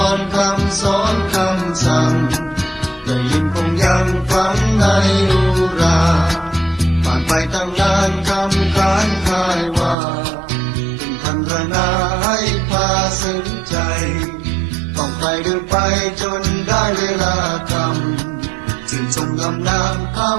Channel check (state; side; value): drops out; left; at 10.0 s